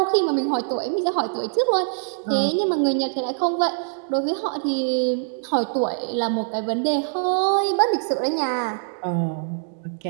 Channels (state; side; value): silent; left; digital silence